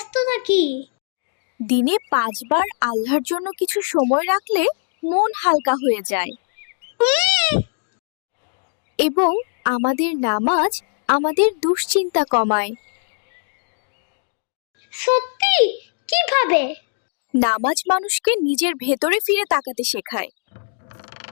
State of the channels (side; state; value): right; silent; 65 dB below the other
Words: থাকি। দিনে 5 বার আল্লাহর জন্য কিছু সময় রাখলে মন হালকা হয়ে যায়। এবং আমাদের নামাজ আমাদের দুশ্চিন্তা কমায়। সত্যি? কিভাবে? নামাজ মানুষকে নিজের ভেতরে ফিরে তাকাতে শেখায়।